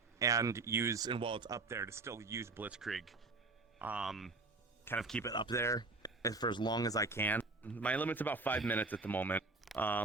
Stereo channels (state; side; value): quieter; left; 3.5 dB